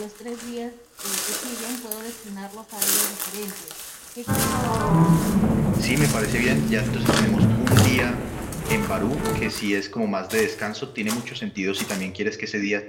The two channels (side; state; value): both; identical; correlation 1.00